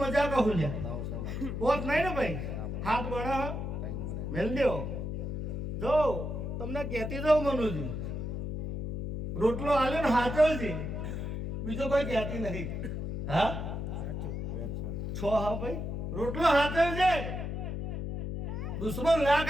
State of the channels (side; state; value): left; noise; hum, 4 dB below the sound